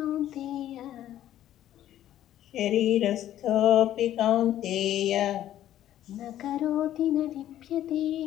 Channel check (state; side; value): quieter; right; 12.3 dB